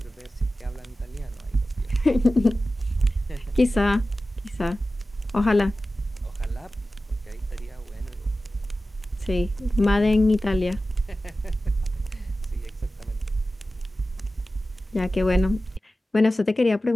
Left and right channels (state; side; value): normal; both; correlation 0.95